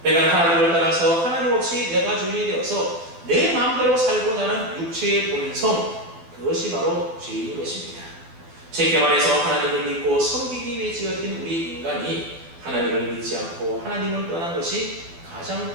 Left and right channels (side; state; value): left; late; 12 ms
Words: 내가 하나님을 떠나서 하나님 없이 내가 주인이 되어서 내 마음대로 살고자 하는 육체의 본성, 그것이 바로 죄인 것입니다. 쉽게 말해서 하나님을 믿고 섬기기 위해 지어진 우리 인간이 하나님을 믿지 않고 하나님을 떠난 것이